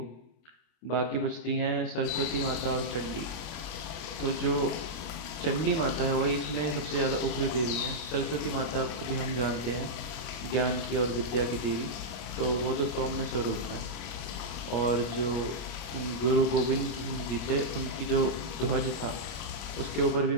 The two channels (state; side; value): late; right; 25 ms